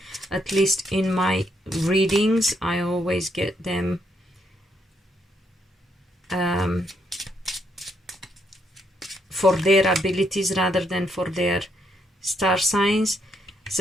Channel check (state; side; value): normal; both; correlation 0.75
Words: at least in my readings, I always get them for their abilities rather than for their star signs.